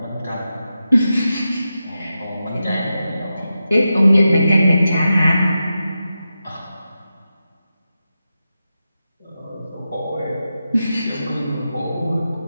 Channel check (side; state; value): both; inverted; correlation -0.90